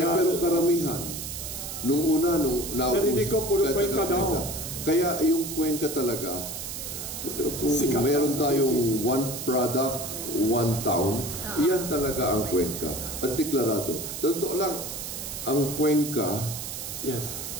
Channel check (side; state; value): right; noise; hiss, 7 dB below the sound